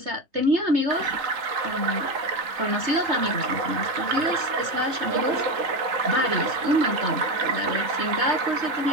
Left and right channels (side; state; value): left; late; 3.8 ms